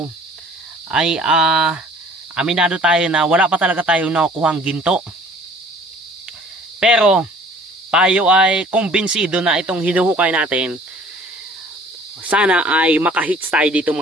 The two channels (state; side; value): normal; both; correlation 0.52